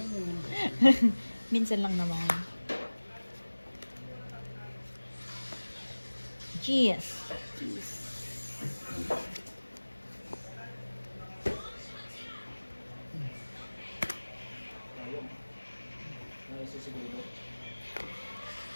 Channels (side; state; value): both; inverted; correlation -1.00